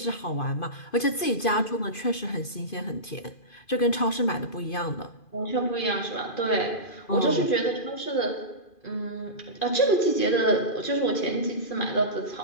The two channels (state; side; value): late; right; 2.4 ms